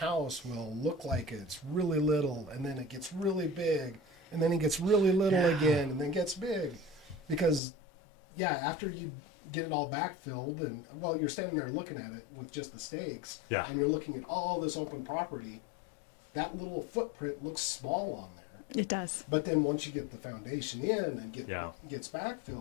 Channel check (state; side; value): drops out; right; at 7.6 s